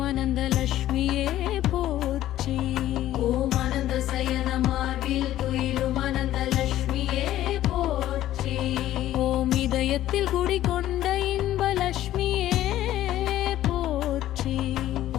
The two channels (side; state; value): right; quieter; 13.5 dB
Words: அனந்த லட்சுமியே போற்றி. ஓம் அனந்த சயன மார்பில் துயிலும் அனந்த லட்சுமியே போற்றி. ஓம் இதயத்தில் குடிகொண்ட இன்ப லட்சுமியே போற்றி.